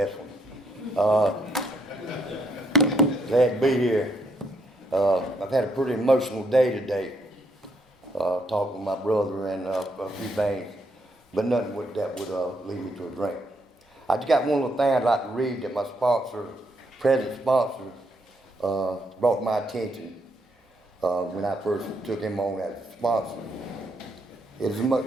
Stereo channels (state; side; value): normal; both; correlation 0.75